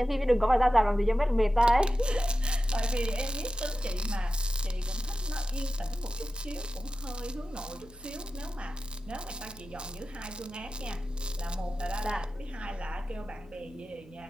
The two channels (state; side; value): noise; left; hum, 26 dB below the sound